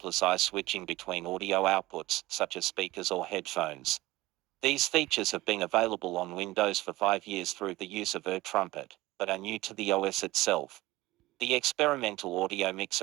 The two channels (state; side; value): quieter; left; 18.5 dB